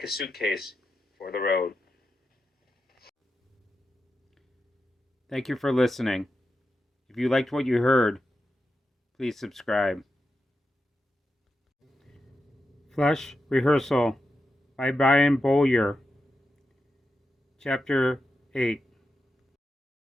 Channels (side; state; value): both; normal; correlation 0.88